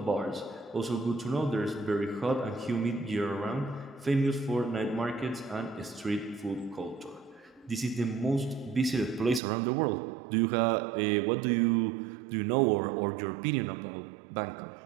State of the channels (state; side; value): drops out; left; at 9.4 s